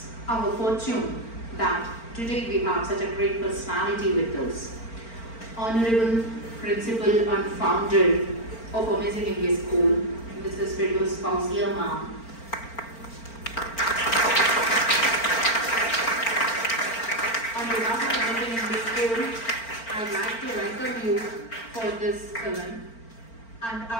our fortune that today we have such a great personality with us. Honorable Principal and Founder of Amazing English School, Mrs. Firdaus Fauzia Ma'am. On behalf of Amazing English School, I would like to welcome you for this event, and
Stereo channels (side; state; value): right; late; 4.4 ms